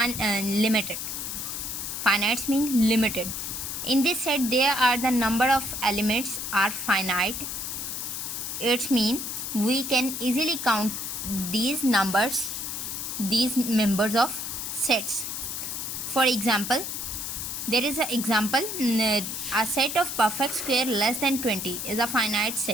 Finite means limited. In this set there are the number of elements are finite. It means we can easily count these members of sets. For example, there is an example, a set of perfect square less than 20 is a finite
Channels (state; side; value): noise; left; hiss, 5 dB below the sound